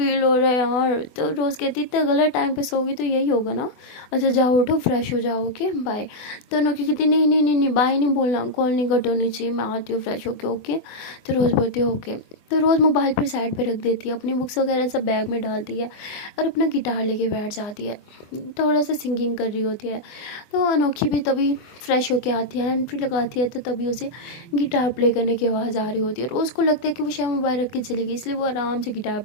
हो रहा है यार। तो रोज़ कहती इतना गलत टाइम पे सोगी तो यही होगा ना। अच्छा जाओ उठो फ्रेश हो जाओ ओके बाय। तो अनोखी कहती नहीं नहीं नहीं नहीं बाय नहीं बोलना, कॉल नहीं कट होनी चाहिए, मैं आती हूँ फ्रेश होके ओके। तो रोज़ बोलती है ओके। तो रोज़ मोबाइल पर साइड पे रख देती है, अपनी बुक्स वगैरह सब बैग में डालती है और अपना गिटार लेके बैठ जाती है, थोड़ा सा सिंगिंग कर रही होती है। तो अनोखी भी तभी फ्रेश होके आती है, हैंड फ्री लगाती है, तो तभी उसे गिटार प्ले करने की आवाज़ आ रही होती है और उसको लगता है कि वो शायद मोबाइल रख के चली गई, इसलिए वो आराम से गिटार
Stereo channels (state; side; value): late; right; 24 ms